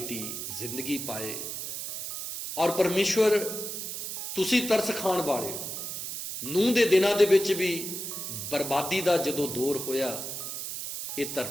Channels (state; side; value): noise; right; hiss, 6 dB below the sound